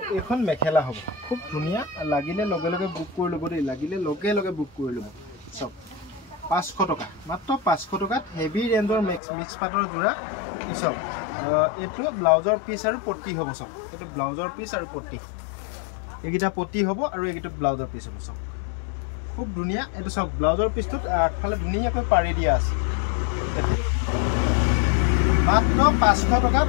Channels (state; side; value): drops out; right; at 9.2 s